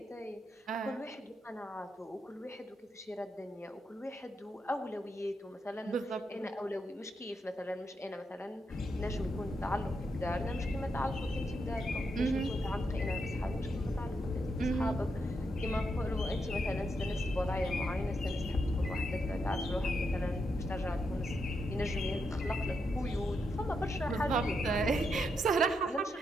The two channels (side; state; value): both; normal; correlation 0.82